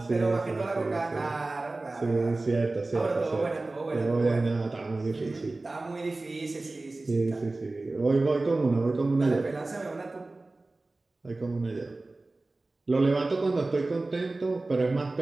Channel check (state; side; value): quieter; left; 3.1 dB